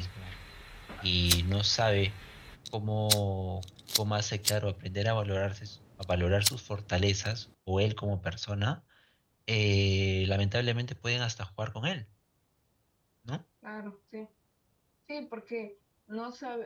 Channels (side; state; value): both; identical; correlation 1.00